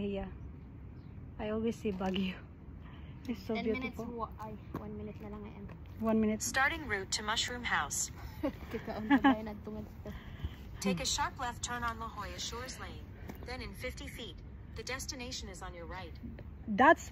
I always see Baguio. It's so 10 beautiful. minutes, 1 minute na lang ngayon. 1 minute. Starting route to Mushroom House. Take a sharp left turn on La Jolla Shores Lane. Then in 50 feet, the destination is on your right. That's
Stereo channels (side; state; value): both; identical; correlation 1.00